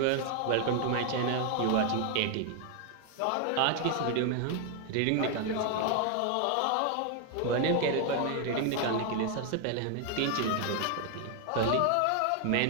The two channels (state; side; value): different; both; correlation 0.00